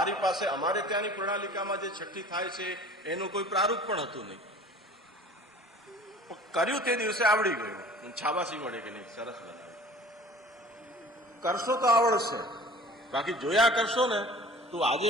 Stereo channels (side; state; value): both; normal; correlation 0.45